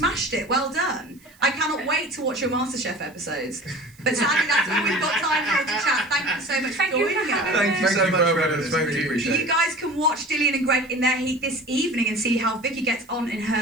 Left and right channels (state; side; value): noise; right; hiss, 28 dB below the sound